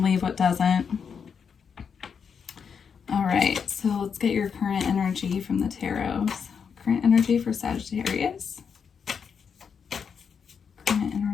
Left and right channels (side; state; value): right; quieter; 6.6 dB